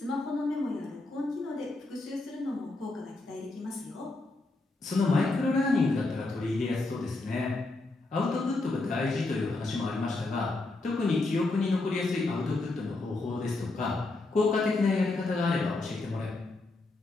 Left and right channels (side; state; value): right; quieter; 3.2 dB